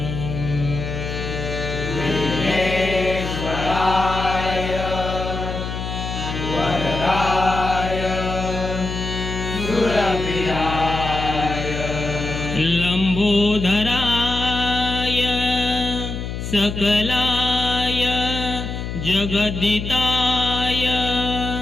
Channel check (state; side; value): noise; left; hum, 5 dB below the sound